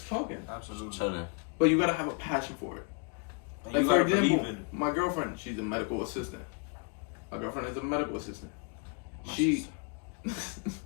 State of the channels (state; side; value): quieter; right; 37.1 dB